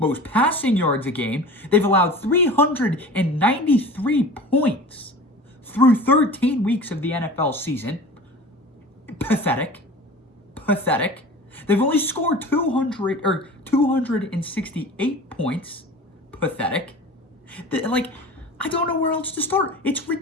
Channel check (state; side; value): normal; both; correlation 0.38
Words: passing yards a game. They've allowed 393 points through 13 weeks of the NFL season. Pathetic. They've only scored 268 points. Pathetic. I don't know where else to start. It's